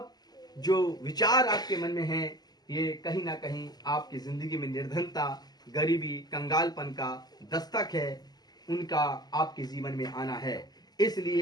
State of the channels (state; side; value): late; right; 0.20 ms